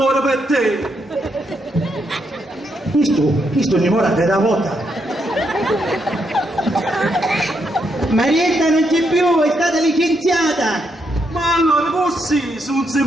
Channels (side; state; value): both; normal; correlation 0.79